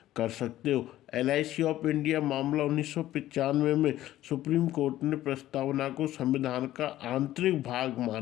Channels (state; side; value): quieter; right; 14.1 dB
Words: कर सकते हो। LIC ऑफ इंडिया मामला 1995 में सुप्रीम कोर्ट ने प्रस्तावना को संविधान का आंतरिक भाग